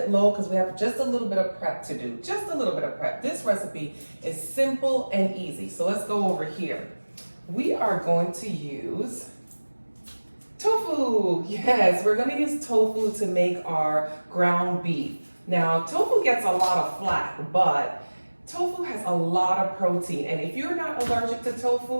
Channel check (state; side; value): inverted; both; correlation -1.00